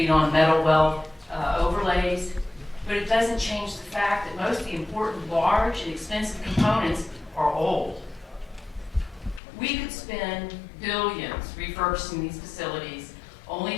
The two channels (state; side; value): drops out; right; at 9.4 s